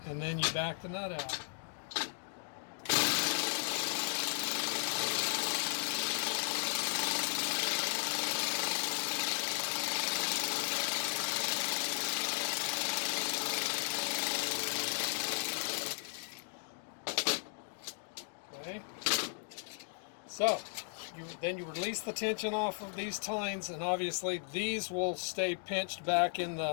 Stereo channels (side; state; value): right; silent; 54 dB below the other